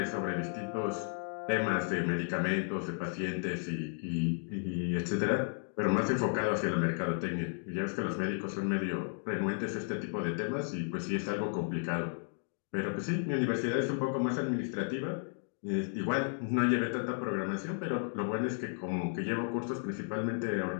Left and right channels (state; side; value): silent; right; 55 dB below the other